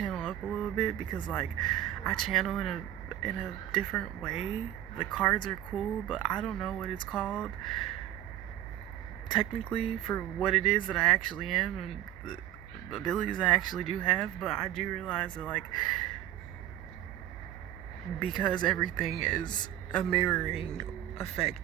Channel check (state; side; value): quieter; left; 12.5 dB